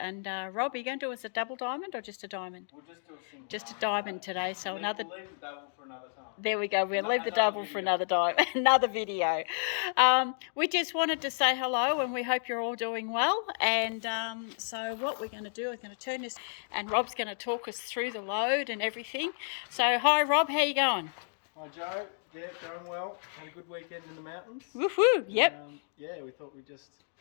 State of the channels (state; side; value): silent; right; digital silence